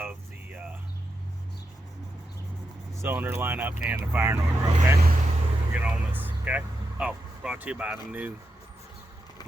the cylinder lineup and the firing order, okay? We'll get on this, okay? Oh, brought to you by the new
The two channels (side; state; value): both; normal; correlation 0.86